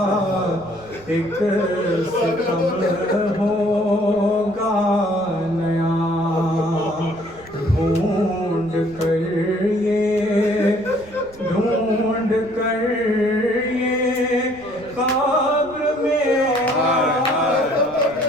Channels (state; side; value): noise; right; rumble, 23 dB below the sound